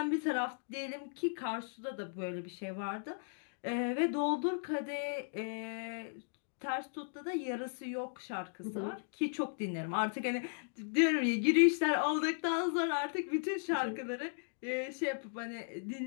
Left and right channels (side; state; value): right; silent; digital silence